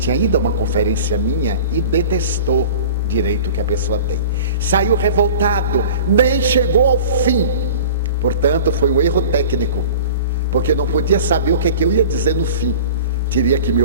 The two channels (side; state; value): both; inverted; correlation -0.40